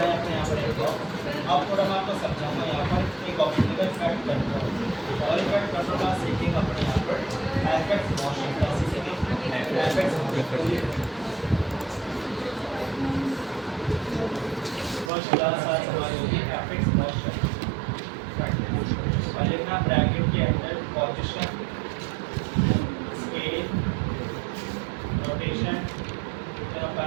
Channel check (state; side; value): drops out; left; at 15.1 s